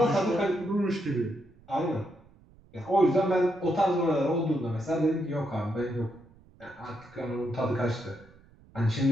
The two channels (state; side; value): noise; right; rumble, 27 dB below the sound